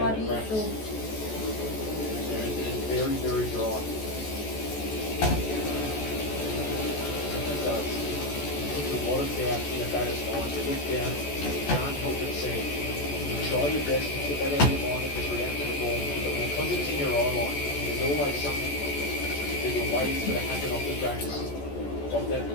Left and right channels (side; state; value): right; late; 14 ms